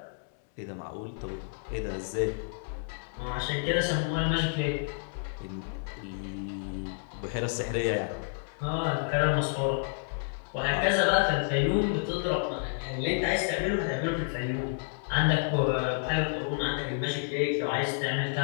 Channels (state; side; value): silent; right; digital silence